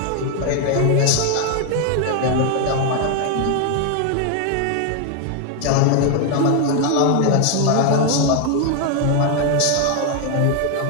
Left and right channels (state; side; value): different; both; correlation 0.01